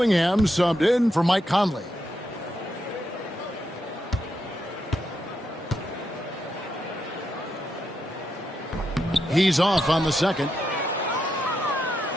subbed in for Mike Conley. He's off on the second.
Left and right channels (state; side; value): normal; both; correlation 0.83